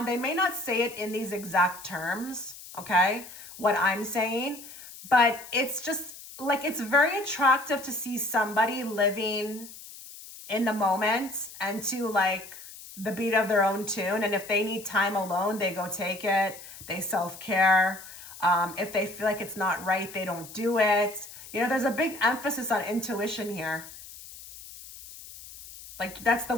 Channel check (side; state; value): left; noise; hiss, 16 dB below the sound